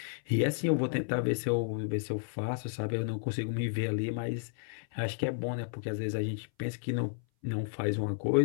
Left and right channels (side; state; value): right; silent; 56 dB below the other